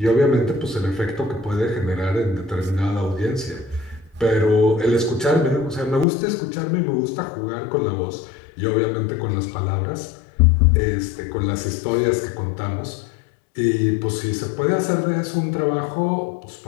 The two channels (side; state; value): right; drops out; at 6.1 s